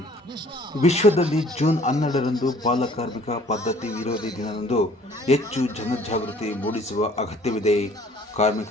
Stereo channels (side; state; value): both; normal; correlation 0.55